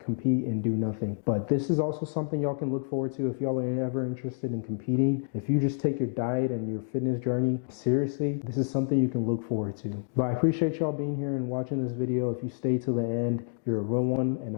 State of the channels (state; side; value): silent; right; digital silence